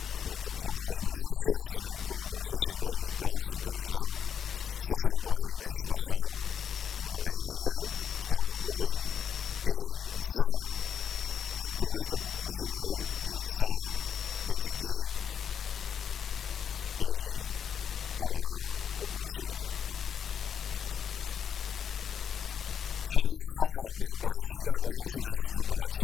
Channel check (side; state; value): right; quieter; 7.9 dB